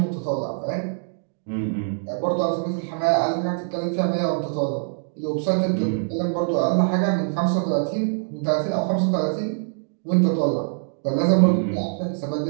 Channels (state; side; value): silent; left; digital silence